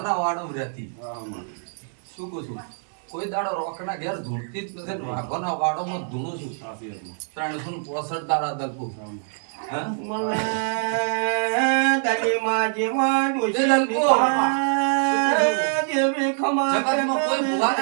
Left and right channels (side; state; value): left; silent; digital silence